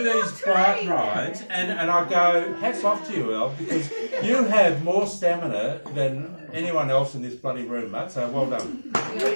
these bike rides, and I go, hats off to you, El, because you have more stamina than anyone else in this bloody room, mate. So well done.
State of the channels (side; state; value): both; inverted; correlation -1.00